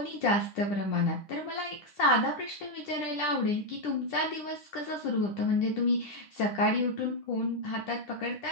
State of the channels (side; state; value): right; late; 10 ms